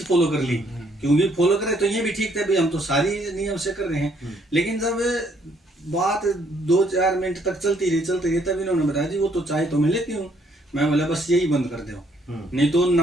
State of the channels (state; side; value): normal; both; correlation 0.68